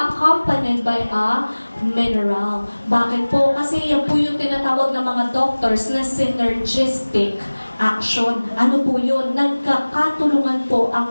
by a mineral. Bakit po? Kasi yan po yung tinatawag ng mga doctors na synergistic action. Ano po yun? Nagkakatulungan po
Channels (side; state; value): both; inverted; correlation -1.00